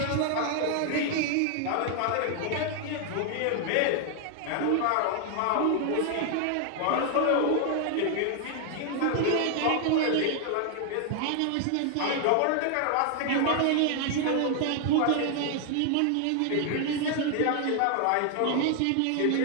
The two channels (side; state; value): both; different; correlation 0.00